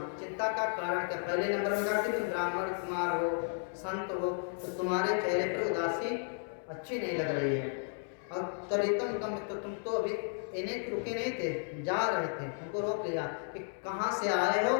चिंता का कारण क्या। पहले नंबर में कहा कि तुम ब्राह्मण कुमार हो, संत हो, तो तुम्हारे चेहरे पर उदासी अच्छी नहीं लग रही है। और तरीतम कम, तो तुम तो अभी इन्हें रुके नहीं थे, जा रहे थे, तुमको रोक लिया कि कहाँ से आए हो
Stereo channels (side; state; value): right; silent; 55 dB below the other